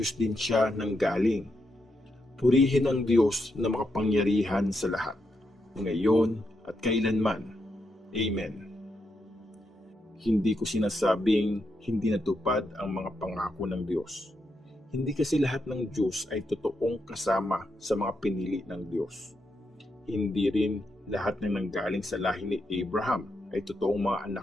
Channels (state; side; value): normal; both; correlation 0.83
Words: din siya nanggaling. Purihin ang Diyos na makapangyarihan sa lahat, ngayon at kailanman. Amen. Hindi ko sinasabing hindi natupad ang mga pangako ng Diyos. Hindi kasi lahat ng Diyos ay totoong kasama sa mga pinili ng Diyos. Hindi rin lahat ng nanggaling sa lahi ni Abraham ay totoong mga